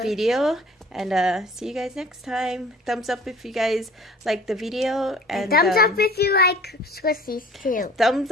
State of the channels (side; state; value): both; normal; correlation 0.48